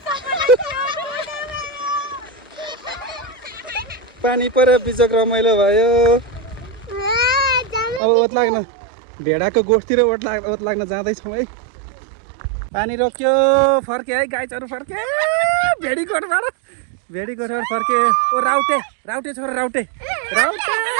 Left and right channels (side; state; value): left; drops out; at 8.0 s